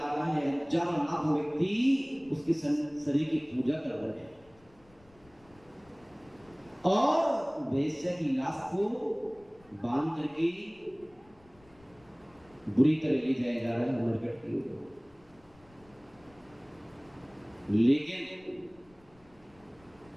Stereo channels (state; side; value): noise; left; rumble, 28 dB below the sound